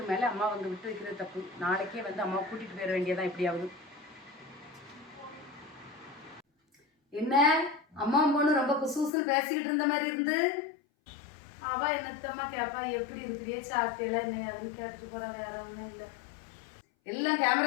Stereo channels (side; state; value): right; drops out; at 9.1 s